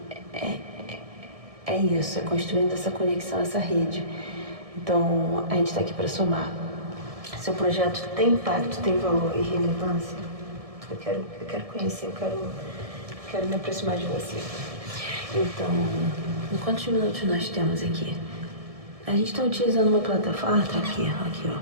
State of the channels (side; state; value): left; late; 1.7 ms